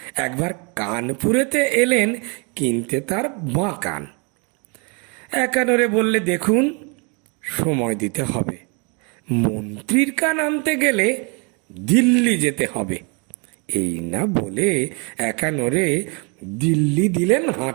একবার কানপুরেতে এলেন কিনতে তার বাঁ কান। একানোরে বললে, দেখুন সময় দিতে হবে, মন্ত্রীর কান আনতে গেলে দিল্লি যেতে হবে। এই না বলে একানোরে দিল্লি দিলেন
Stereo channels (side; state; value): left; quieter; 33.1 dB